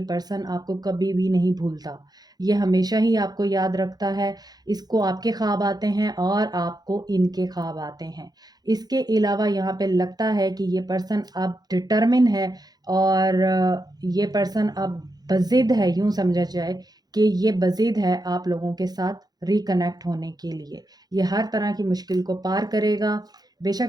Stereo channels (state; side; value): late; left; 0.19 ms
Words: पर्सन आपको कभी भी नहीं भूलता, ये हमेशा ही आपको याद रखता है। इसको आपके ख्वाब आते हैं और आपको इनके ख्वाब आते हैं। इसके अलावा यहाँ पे लगता है कि ये पर्सन अब डिटर्मिन है और ये पर्सन अब बज़िद है, यूँ समझा जाए कि ये बज़िद है आप लोगों के साथ रिकनेक्ट होने के लिए। ये हर तरह की मुश्किल को पार करेगा।